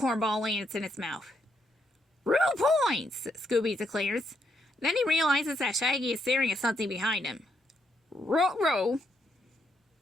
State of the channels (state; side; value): normal; both; correlation 0.77